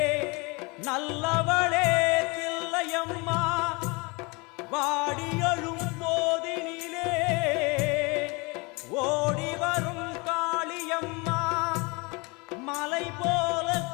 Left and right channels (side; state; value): right; quieter; 27.8 dB